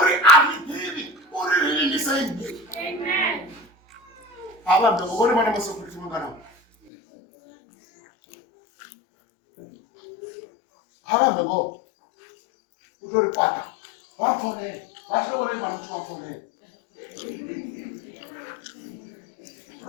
aridivi uriririniseini avambe vone vana masokuriti manganawo avambe vo utoripata vafone vatorei vana kuti vafone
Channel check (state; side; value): drops out; right; at 6.9 s